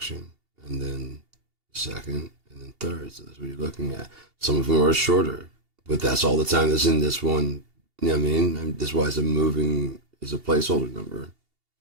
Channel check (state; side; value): late; left; 2.8 ms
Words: and then second, and then third. So that's what you're looking at. Some of them are shorter, but that's all the time that's in this one. You know what I mean? And that's why it's a moving, is a placeholder number.